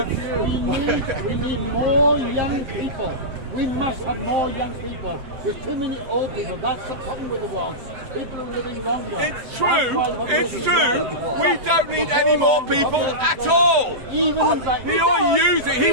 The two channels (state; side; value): late; left; 7.9 ms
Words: We need more young people. We must have more young people. There's too many old people. That's the problem with the world. People are living longer. It's true. It's true. We don't need any more people at all. You're using. He